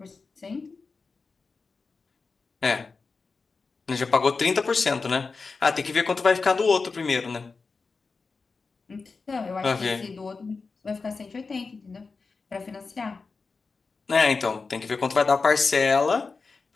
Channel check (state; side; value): quieter; right; 4.4 dB